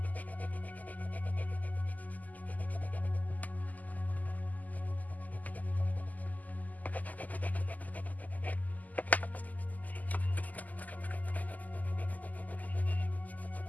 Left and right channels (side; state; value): right; late; 0.080 ms